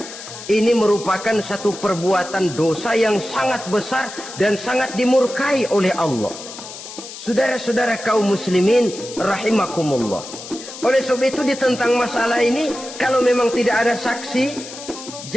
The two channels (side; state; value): left; noise; hiss, 13 dB below the sound